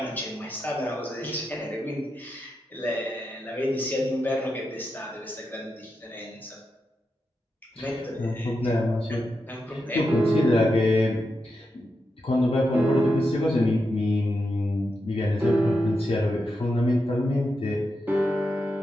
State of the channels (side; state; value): both; normal; correlation 0.87